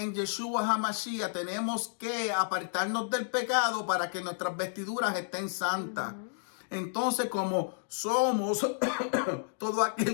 Yeshua HaMashiach tenemos que apartarnos del pecado para que nuestras vestiduras estén santas. Entonces, como somos, todo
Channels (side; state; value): right; silent; digital silence